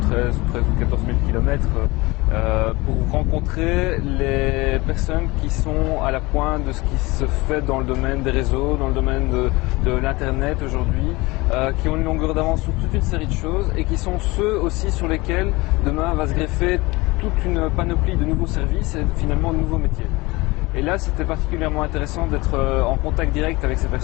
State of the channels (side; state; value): right; quieter; 22.6 dB